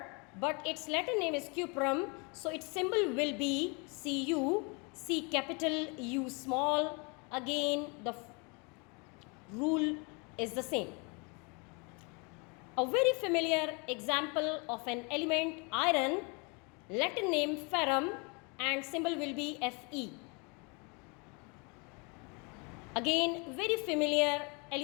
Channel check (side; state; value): right; quieter; 31.9 dB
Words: but its Latin name is cuprum. So its symbol will be Cu, C capital, U small. Again, the rule is the same. A very familiar example of an element, iron, Latin name ferrum and symbol will be Fe. Again, very familiar